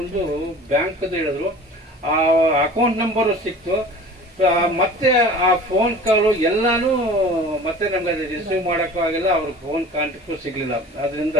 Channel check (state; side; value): normal; both; correlation 0.42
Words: ಬ್ಯಾಂಕ್ದು ಹೇಳಿದ್ರು. ಆ ಅಕೌಂಟ್ ನಂಬರು ಸಿಕ್ತು. ಮತ್ತೆ ಆ ಫೋನ್ ಕಾಲು ಎಲ್ಲಾನು ಮತ್ತೆ ನಮ್ಗೆ ಅದು ರಿಸೀವ್ ಮಾಡೋಕ್ಕೂ ಆಗಿಲ್ಲ, ಅವ್ರ ಫೋನ್ ಕಾಂಟ್ಯಾಕ್ಟು ಸಿಗಲಿಲ್ಲ. ಅದರಿಂದ